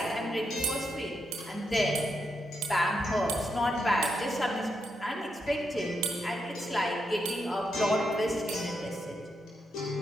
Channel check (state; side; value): normal; both; correlation 0.82